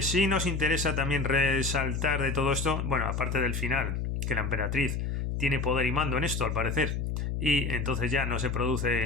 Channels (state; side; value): noise; left; hum, 2 dB below the sound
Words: sí nos interesa también resaltar de todo esto, bueno, aparte del final, que la emperatriz tiene poder y mando en esto, al parecer, y entonces ya no se